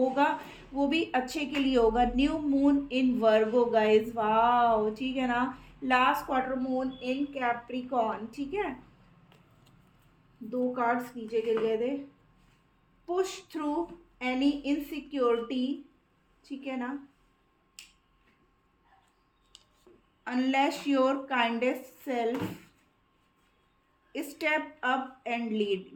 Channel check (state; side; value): identical; both; correlation 1.00